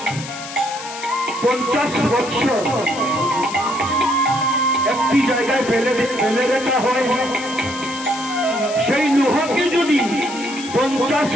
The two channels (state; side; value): noise; left; hiss, 11 dB below the sound